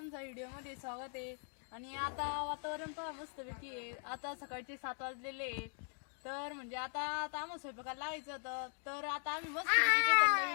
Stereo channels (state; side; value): silent; right; 51 dB below the other